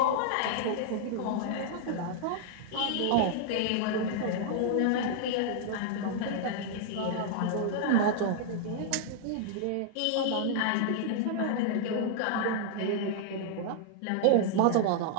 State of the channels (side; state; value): both; different; correlation -0.01